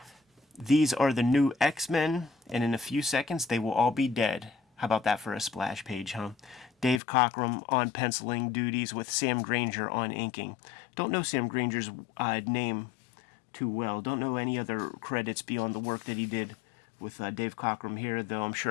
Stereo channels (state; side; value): drops out; right; at 7.0 s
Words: These are the new X-Men, and in a few seconds they will all be dead. How about that for a splash page, huh? Dave Cockrum on penciling duties with Sam Granger on inking. Don't know Sam Granger's name too well. Don't know any other credits beyond the work that he did with Dave Cockrum here, though I'm